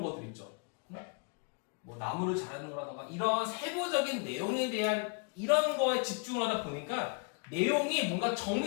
것들 있죠. 나무를 자르는 거라던가 이런 세부적인 내용에 대한 이런 거에 집중을 하다 보니까 내용이 뭔가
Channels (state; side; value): quieter; right; 35.7 dB